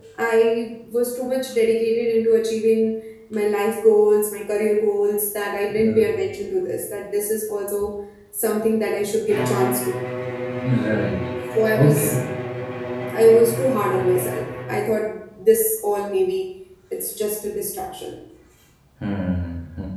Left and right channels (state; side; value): identical; both; correlation 1.00